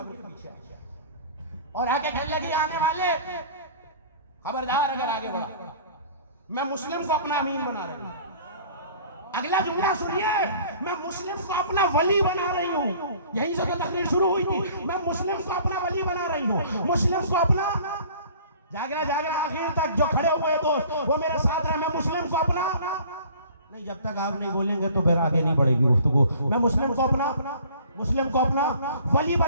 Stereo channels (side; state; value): both; inverted; correlation -0.49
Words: के पीछे और आके कहने लगी आने वाले खबरदार, अगर आगे बढ़ा मैं मुस्लिम को अपना अमीन बना रही हूँ। अगला जुमला सुनिए, मैं मुस्लिम को अपना वली बना रही हूँ। यहीं से तो तकरीर शुरू हुई थी। मैं मुस्लिम को अपना वली बना रही हूँ, मुस्लिम को अपना, जागना जागना आखिर तक जो खड़े हुए दोस्त वो मेरे साथ रहे। मैं मुस्लिम को अपना नहीं, जब तक आप नहीं बोलेंगे तो फिर आगे नहीं बढ़ेगी गुफ्तगू। मैं मुस्लिम को अपना वली